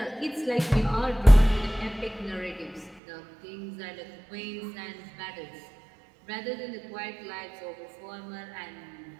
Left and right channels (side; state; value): left; drops out; at 3.0 s